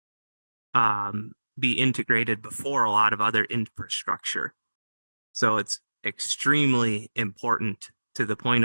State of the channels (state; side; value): inverted; both; correlation -1.00